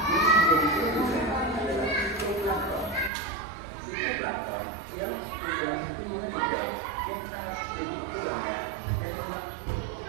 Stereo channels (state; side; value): drops out; left; at 3.1 s